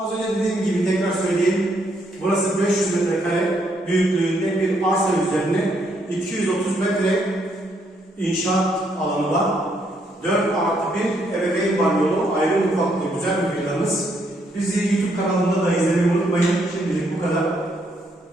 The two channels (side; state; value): both; normal; correlation 0.73